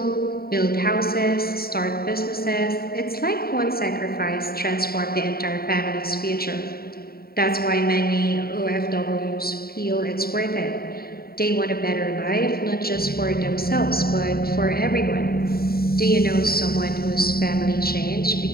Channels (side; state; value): right; late; 0.44 ms